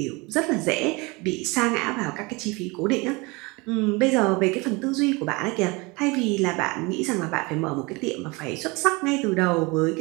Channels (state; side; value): quieter; left; 25.9 dB